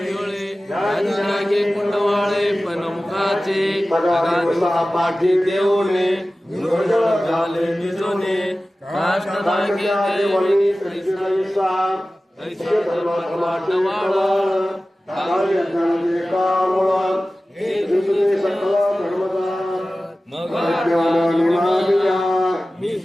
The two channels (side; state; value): both; normal; correlation 0.96